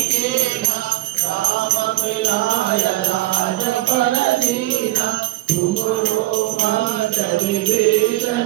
कीना राम मिलाय राज पर दीना तुमरो मंत्र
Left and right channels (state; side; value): quieter; left; 17.6 dB